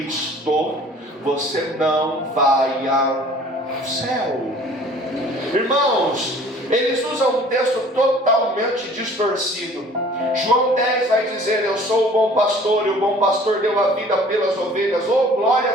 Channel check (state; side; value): normal; both; correlation 0.50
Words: você não vai ao céu. Irmãos, eles usam um texto totalmente distorcido. João 10 vai dizer: eu sou o bom pastor, e o bom pastor deu a vida pelas ovelhas. Oh, glória